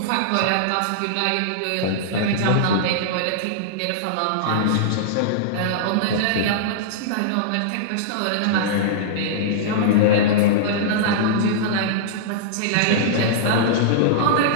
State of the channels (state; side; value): different; both; correlation -0.02